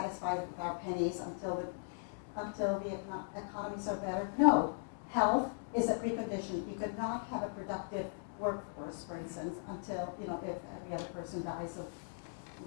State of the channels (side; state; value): right; silent; digital silence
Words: with our pennies until the economies are better. No, health is a precondition. You could not have a productive workforce, for instance, until if every other person dies of